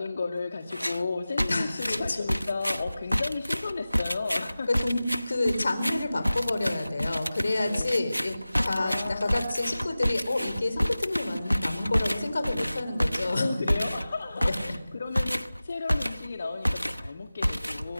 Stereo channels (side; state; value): both; inverted; correlation -0.96